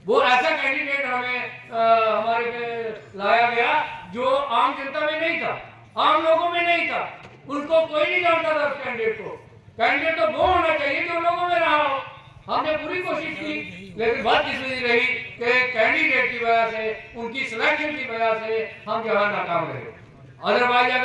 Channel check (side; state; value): both; identical; correlation 1.00